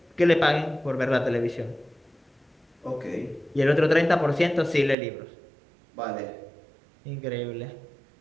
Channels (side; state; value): left; drops out; at 5.0 s